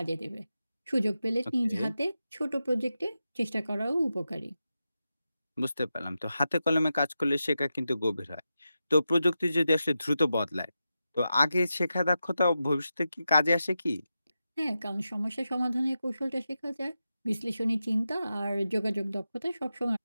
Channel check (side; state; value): both; inverted; correlation -0.90